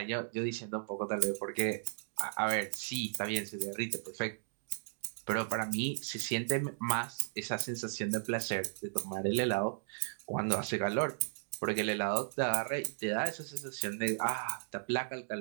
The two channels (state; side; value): silent; left; digital silence